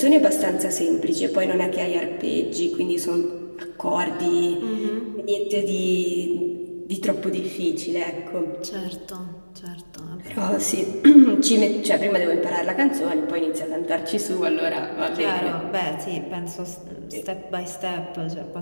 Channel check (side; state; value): both; inverted; correlation -1.00